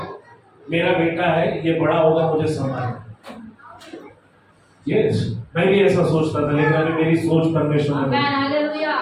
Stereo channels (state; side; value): identical; both; correlation 1.00